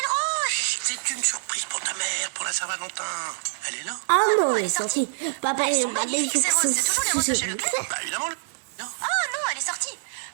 rouges! C'est une surprise pour ta mère, pour la Saint-Valentin. Elle est là? Ah non, elle est sortie. Papa, il est magnifique. C'est toujours les roses de chez Leclerc. Bah, évidemment, non. Oh non, elle est sortie!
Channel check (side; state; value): left; silent; digital silence